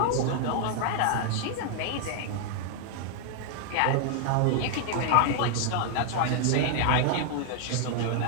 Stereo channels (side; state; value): both; different; correlation 0.00